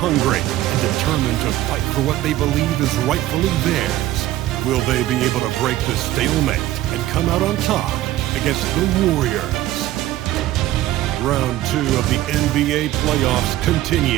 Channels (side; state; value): left; quieter; 14.9 dB